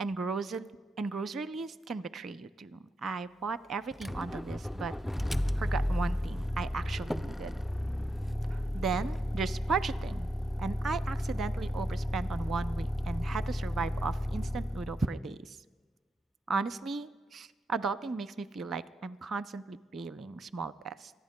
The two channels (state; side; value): normal; both; correlation 0.85